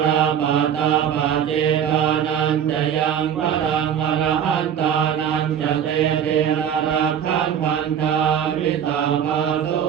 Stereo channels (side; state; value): left; quieter; 8.9 dB